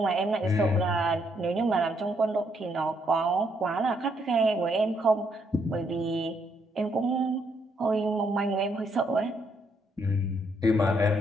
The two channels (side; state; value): both; normal; correlation 0.73